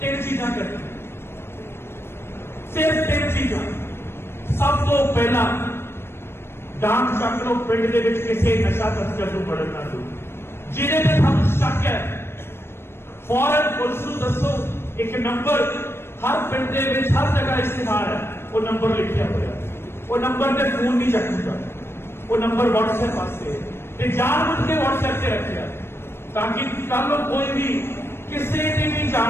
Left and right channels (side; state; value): right; late; 0.12 ms